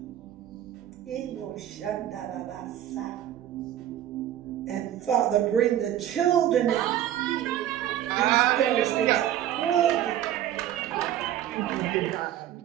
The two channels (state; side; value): quieter; left; 11.8 dB